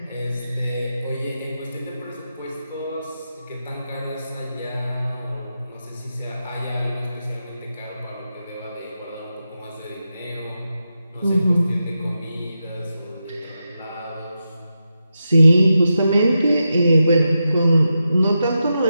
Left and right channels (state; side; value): inverted; both; correlation -0.88